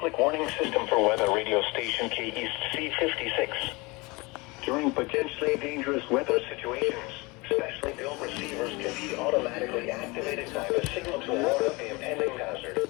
warning system for weather radio station K-East C56. During potentially dangerous weather situations, especially built receivers can be automatically activated by the signal to warn of the impending hazard.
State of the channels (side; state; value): right; quieter; 25.2 dB